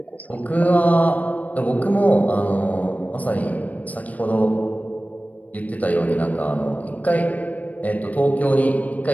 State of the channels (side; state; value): right; late; 0.073 ms